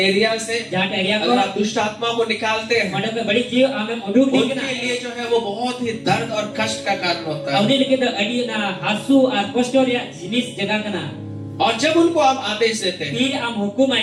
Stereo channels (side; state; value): both; identical; correlation 1.00